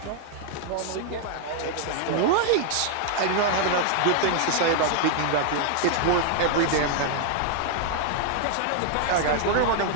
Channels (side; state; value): both; different; correlation 0.00